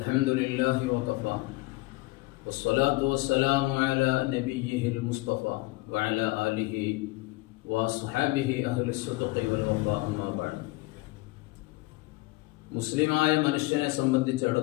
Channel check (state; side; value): quieter; right; 21.5 dB